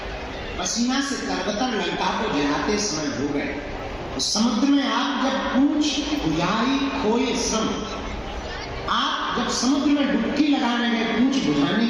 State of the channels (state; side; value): identical; both; correlation 1.00